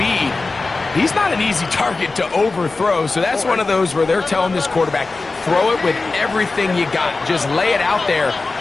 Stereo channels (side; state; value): right; quieter; 3.7 dB